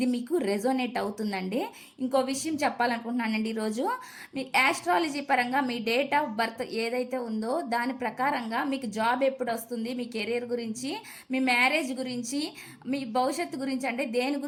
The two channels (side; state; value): both; identical; correlation 1.00